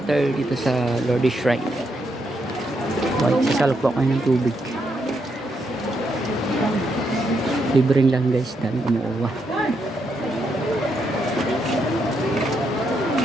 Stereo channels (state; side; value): normal; both; correlation 0.79